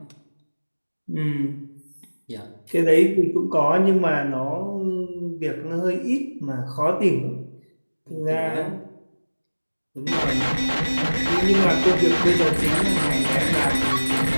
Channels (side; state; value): both; inverted; correlation -1.00